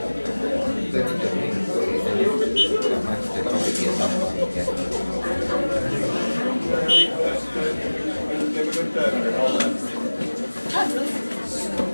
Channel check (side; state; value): both; inverted; correlation -1.00